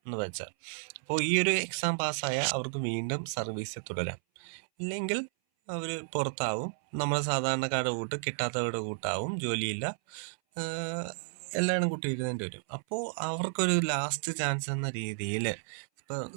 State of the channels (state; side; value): silent; left; 56 dB below the other